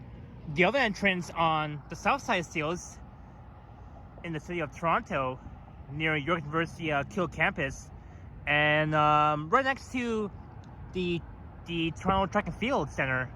the other entrance on the south side of Steeles in the city of Toronto near York University Kill campus, and right next to the Toronto Track and Field Center,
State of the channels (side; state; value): both; identical; correlation 1.00